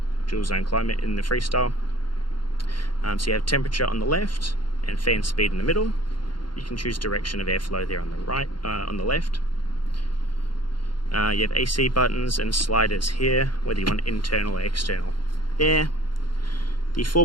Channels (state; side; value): late; right; 0.72 ms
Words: dual zone climate in the Freestyle. So you have temperature on the left and fan speed in the middle. You can choose direction of airflow there on the right, on the left. You have AC buttons and sliders here, whether you want internal or external air. The